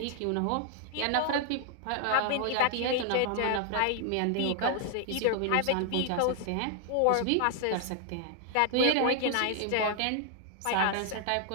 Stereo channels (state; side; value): different; both; correlation 0.00